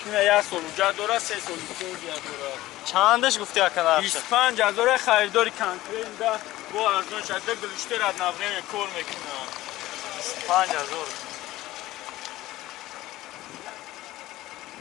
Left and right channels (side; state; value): right; quieter; 16.6 dB